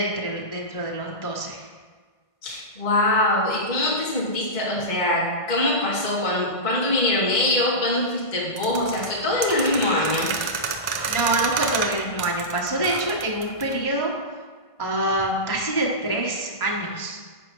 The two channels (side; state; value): right; late; 1.5 ms